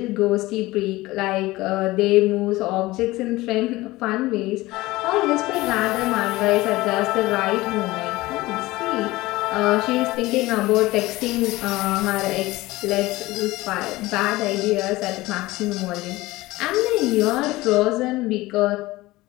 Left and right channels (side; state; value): right; quieter; 19.2 dB